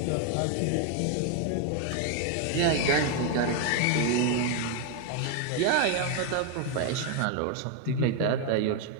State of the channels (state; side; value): different; both; correlation 0.01